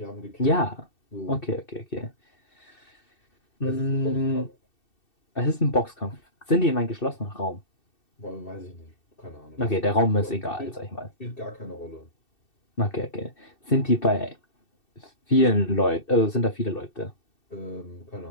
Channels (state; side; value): late; right; 2.7 ms